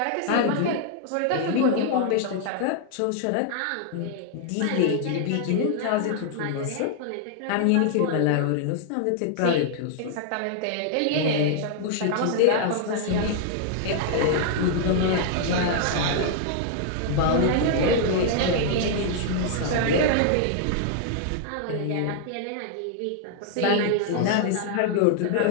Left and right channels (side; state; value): both; different; correlation -0.01